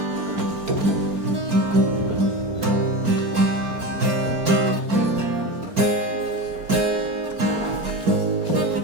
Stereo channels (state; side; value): late; left; 4.3 ms